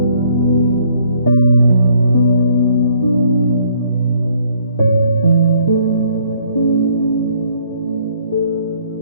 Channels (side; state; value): both; inverted; correlation -0.64